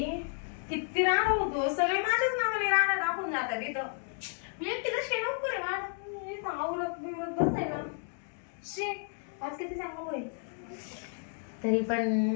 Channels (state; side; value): silent; right; 56 dB below the other